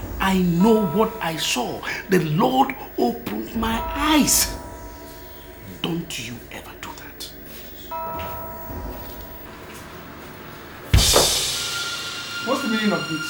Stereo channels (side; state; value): both; identical; correlation 1.00